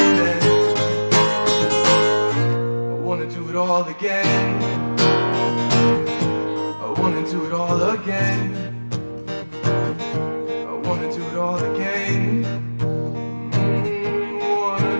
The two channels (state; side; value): inverted; both; correlation -1.00